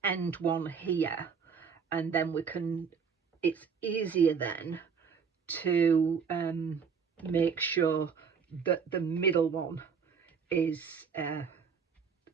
end one here, and then we can, it's easier then to make sure that the middle one is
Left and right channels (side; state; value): left; quieter; 6.2 dB